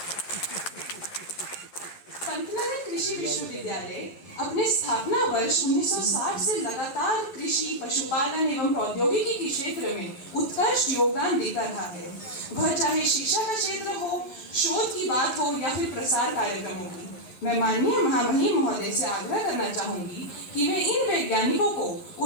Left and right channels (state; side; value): late; right; 11 ms